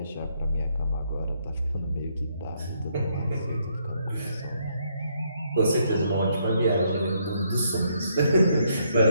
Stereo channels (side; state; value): both; inverted; correlation -0.72